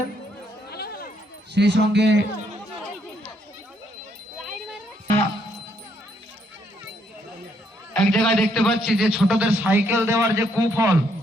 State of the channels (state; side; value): normal; both; correlation 0.72